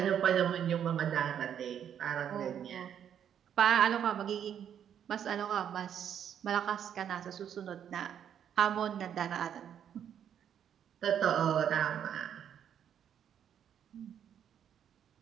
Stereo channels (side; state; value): left; quieter; 9.1 dB